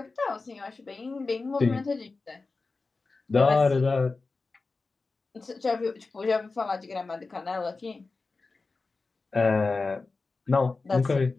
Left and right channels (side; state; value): right; quieter; 3.9 dB